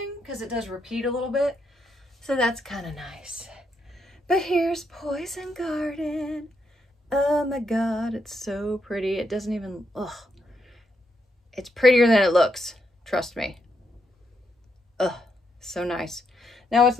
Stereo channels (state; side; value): normal; both; correlation 0.79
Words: because it does repeat a little bit. So that's kind of nice. But here's Poison Garden. Oh my God, it's so pretty. It doesn't even, ugh. It's prettier than it looks. Trust me. Ugh, so nice. Now what's